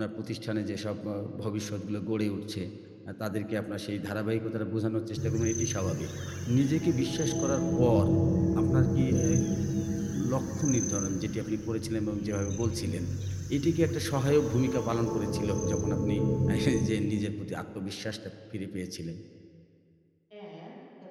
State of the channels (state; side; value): identical; both; correlation 1.00